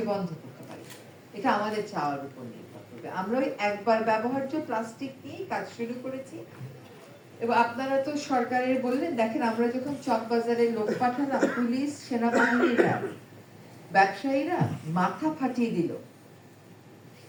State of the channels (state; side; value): identical; both; correlation 1.00